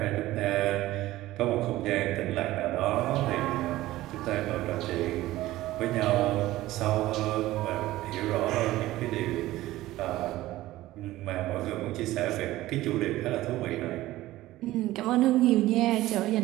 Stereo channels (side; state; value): left; quieter; 16.4 dB